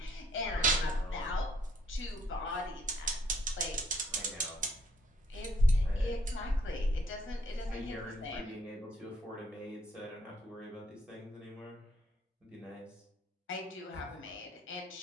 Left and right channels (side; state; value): both; normal; correlation 0.66